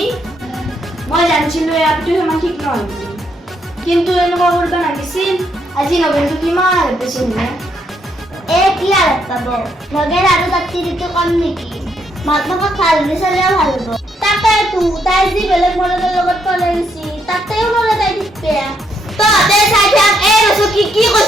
মই জানিছিলো আপটো সিমান ঠিক নহয় বুলি কিন্তু এনেকুৱা কৰিব লাগিছিল আজি নগেনটো কিমান বেছি নে কি আৰাপ পাব নগেন আৰু তাত তিৰিটো কম নেকি মাক বাপক ভাল বুলি চালেও ভাল হ'ব তাকেতো তাই যি বেলেগ মৰাদৰ লগত পলাই গৈছি তাতেও নৰে তাই ঠিক বেয়া তহঁতে চাই থাক ৰচো কি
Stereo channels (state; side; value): normal; both; correlation 0.74